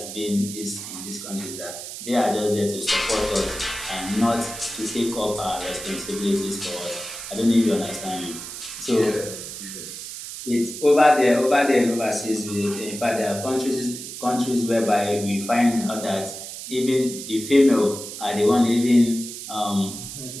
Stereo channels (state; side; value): noise; right; hiss, 10 dB below the sound